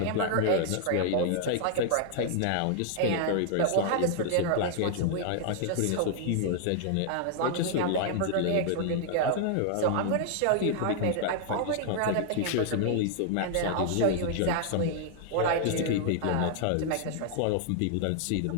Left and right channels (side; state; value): both; different; correlation 0.00